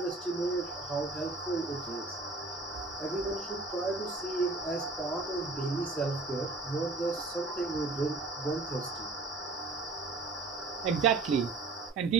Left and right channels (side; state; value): left; quieter; 3.5 dB